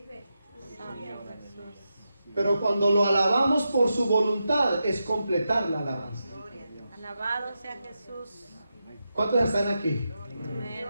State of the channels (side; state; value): both; inverted; correlation -0.88